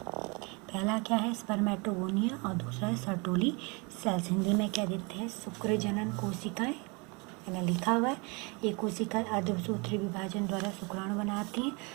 क्या है, स्पर्मेटोगोनिया, और दूसरा है सर्टोली सेल्स। हिंदी में क्या देते हैं, शुक्र जनन कोशिकाएं, मैंने लिखा हुआ है। ये कोशिकाएं अर्धसूत्री विभाजन द्वारा शुक्राणु बनाती हैं।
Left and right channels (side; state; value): left; quieter; 29.7 dB